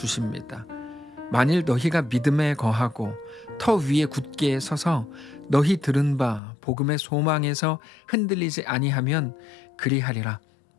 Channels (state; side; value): drops out; right; at 6.4 s